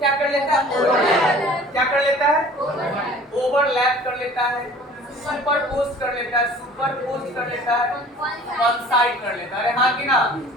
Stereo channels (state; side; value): normal; both; correlation 0.47